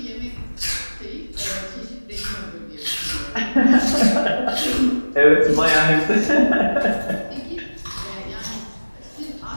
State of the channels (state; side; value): inverted; both; correlation -1.00